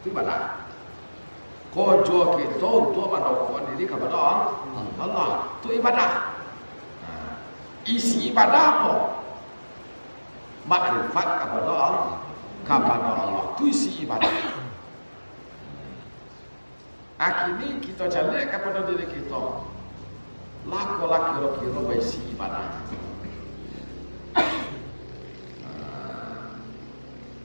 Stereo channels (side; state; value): both; inverted; correlation -1.00